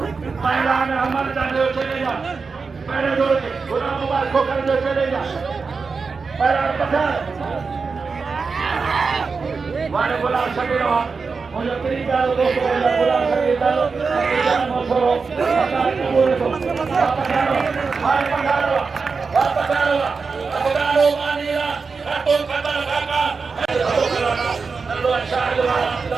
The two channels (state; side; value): quieter; left; 4.8 dB